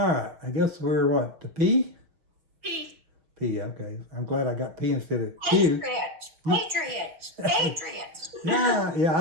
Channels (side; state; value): left; late; 6.3 ms